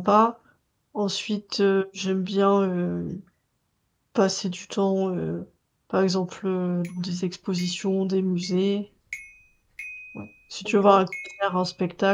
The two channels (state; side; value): identical; both; correlation 1.00